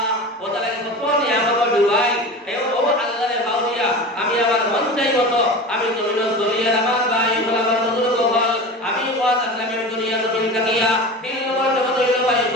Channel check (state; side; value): normal; both; correlation 0.32